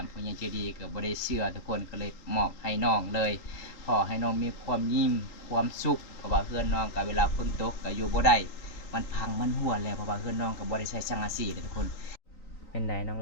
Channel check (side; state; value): right; late; 3.8 ms